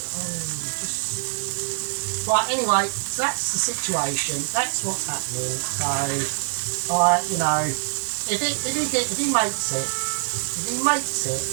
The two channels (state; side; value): silent; left; digital silence